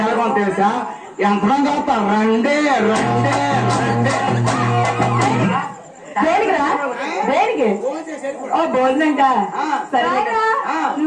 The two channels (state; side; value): identical; both; correlation 1.00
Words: తెలుసా? యంత్రం చదువుతా రండే రండే రండే. దేనికిరా? దేనికి? ఓ భోజనంగా. సరే